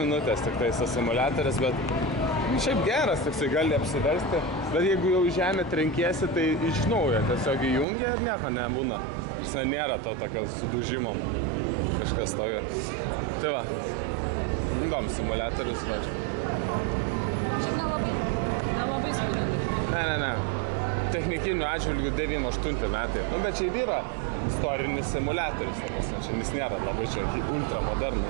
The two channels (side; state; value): left; drops out; at 7.9 s